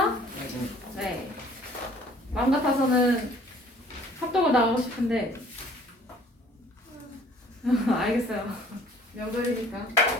네. 마음 같아서는 합독을 나가고 싶은데 알겠어요. 명절이니까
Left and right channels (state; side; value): normal; both; correlation 0.54